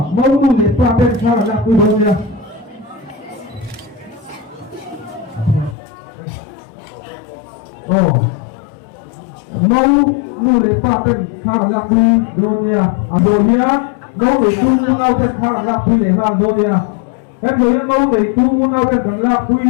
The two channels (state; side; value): drops out; right; at 5.8 s